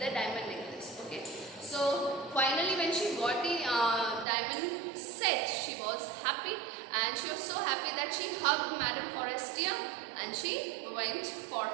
diamond necklace. Okay. So finally when she got the diamond set, she was happy, and she was so happy that she hugged Madame Forestier and she went for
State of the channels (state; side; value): drops out; left; at 4.2 s